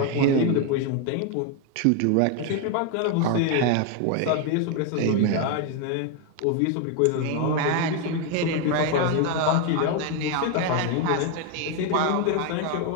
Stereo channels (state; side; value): different; both; correlation 0.01